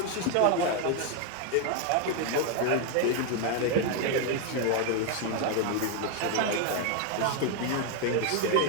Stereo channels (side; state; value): both; different; correlation 0.01